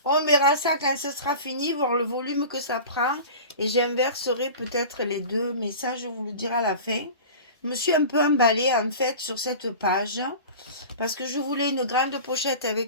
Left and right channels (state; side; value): inverted; both; correlation -0.36